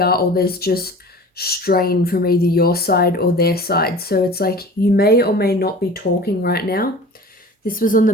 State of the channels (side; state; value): both; normal; correlation 0.40